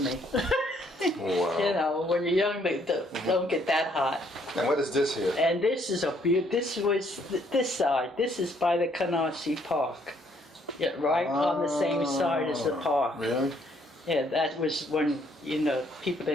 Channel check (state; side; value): normal; both; correlation 0.67